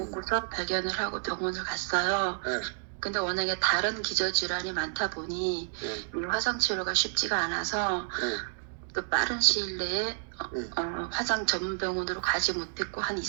발견을 하고 병원을 갔어요. 네. 근데 워낙에 다른 기저질환이 많다 보니 네. 이 화상 치료가 쉽지가 않아서 네. 또 빠른 시일 내에 화상 전문 병원으로 가지 못했고 한 2,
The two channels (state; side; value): silent; left; digital silence